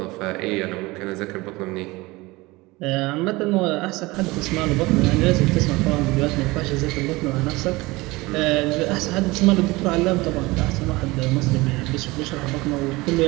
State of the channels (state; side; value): quieter; left; 21.8 dB